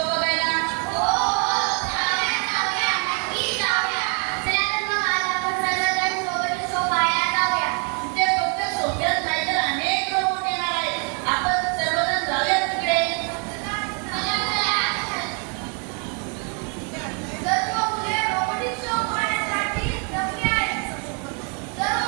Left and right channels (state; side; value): quieter; left; 38.6 dB